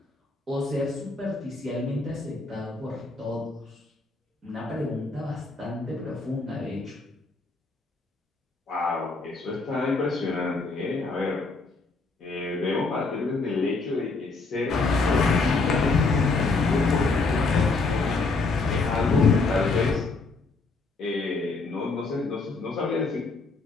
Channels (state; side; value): quieter; right; 3.7 dB